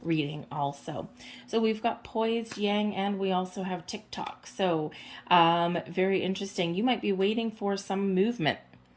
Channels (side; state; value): both; identical; correlation 1.00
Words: reading also. So we've got poised, yang, and we also have TikTok. So very interesting. You might be waiting for some movement.